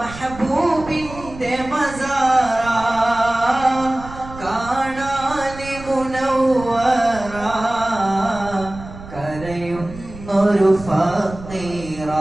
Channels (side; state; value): right; noise; rumble, 15 dB below the sound